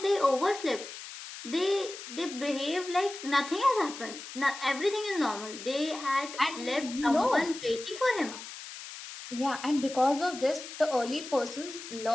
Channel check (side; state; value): left; noise; hiss, 12 dB below the sound